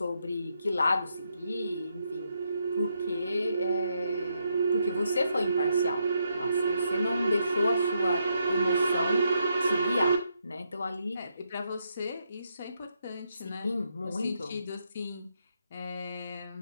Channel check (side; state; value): both; inverted; correlation -0.79